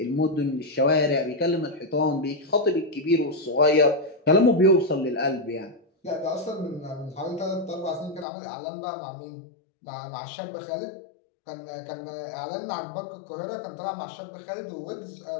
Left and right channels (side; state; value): right; drops out; at 8.2 s